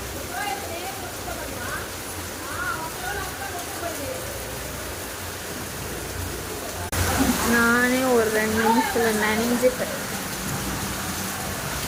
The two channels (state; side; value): identical; both; correlation 1.00